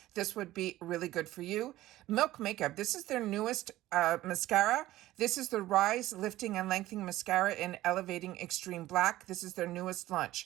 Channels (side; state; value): left; quieter; 15.7 dB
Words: this would be really good for you. Milk Makeup. This is their newest mascara. This is the Rise Lifting and Lengthening Mascara in Elevating Extreme Black. This is their newest